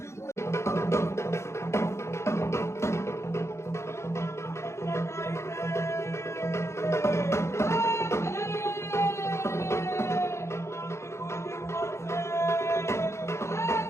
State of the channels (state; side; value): late; right; 0.13 ms